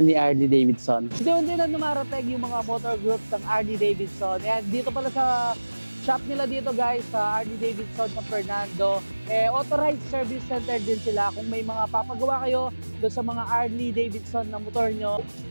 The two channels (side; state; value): both; inverted; correlation -1.00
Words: ni Harley-Davidson. Hindi na numarating yung mga motor groups ng Harley-Davidson. And dito pala sa shop nila dito guys, sa Harley-Davidson San Fernando, authorized service center din sila. Kung may mga papagawa kayo doon sa mga Harley-Davidson na motor nyo,